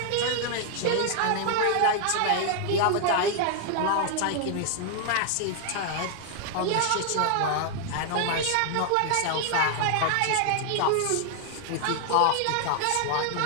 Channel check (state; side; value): different; both; correlation 0.00